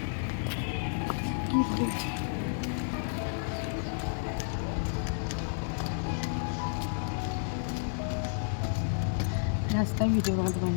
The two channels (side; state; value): right; silent; digital silence